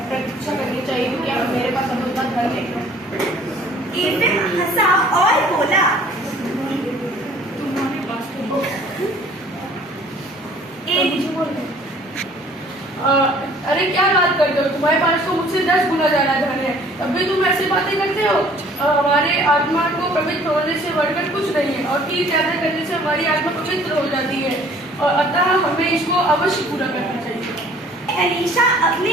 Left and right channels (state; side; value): normal; both; correlation 0.54